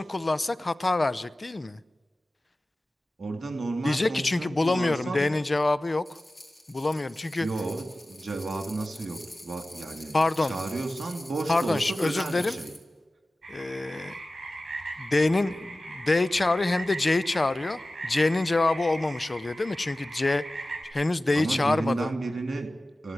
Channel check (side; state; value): both; normal; correlation 0.96